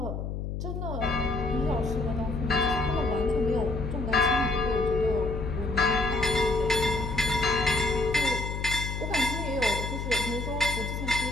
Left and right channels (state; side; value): noise; left; hum, 4 dB below the sound